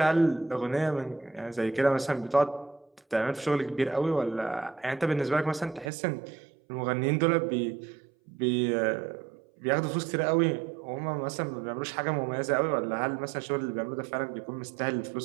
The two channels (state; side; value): drops out; left; at 5.9 s